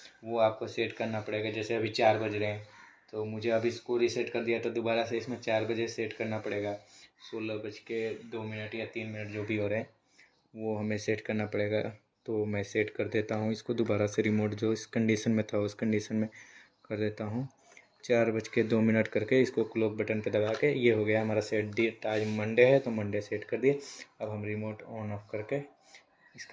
वो आपको सेट करना पड़ेगा। जैसे अभी 4 बज रहे हैं तो मुझे अभी इसको रीसेट कर दिया तो दोबारा से इसमें 4 बजे सेट करना पड़ेगा। 16:02 या 3 जो भी हो रहे हैं वो हमें सेट करना पड़ेगा। तो मैं सेट कर देता हूँ इसको दोबारा से, रिमोट जो इस कंडीशन में था उस कंडीशन में कर देता हूँ। 4:02 करके इसको क्लॉक बटन पे दबा के ये हो गया हमारा सेट। आज मंडे है तो मंडे सेट कर दिए। अब हम रिमोट ऑन ऑफ करके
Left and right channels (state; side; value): identical; both; correlation 1.00